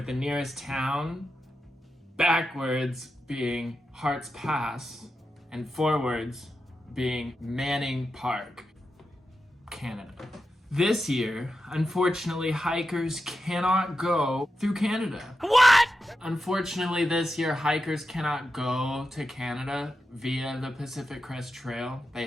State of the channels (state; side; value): normal; both; correlation 0.89